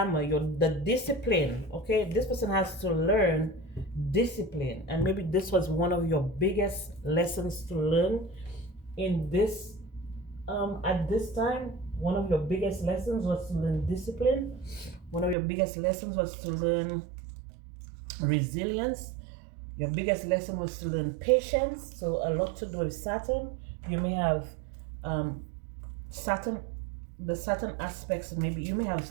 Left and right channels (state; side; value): drops out; left; at 15.4 s